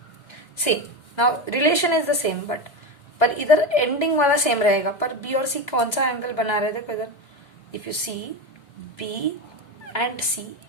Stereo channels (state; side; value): late; right; 2.0 ms